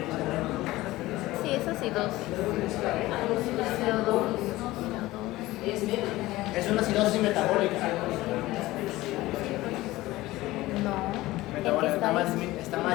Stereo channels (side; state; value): right; quieter; 18.0 dB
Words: sí, es acidosis. CO2. Es una acidosis metabólica. No. Metabólica está más disminuido está